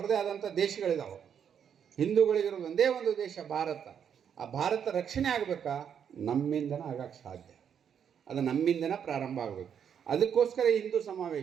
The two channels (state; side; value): quieter; left; 8.1 dB